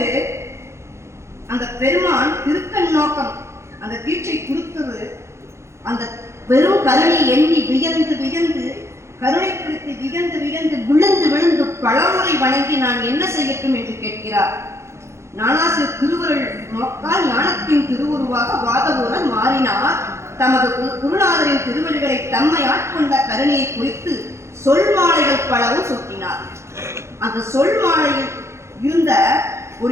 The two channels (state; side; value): late; left; 0.13 ms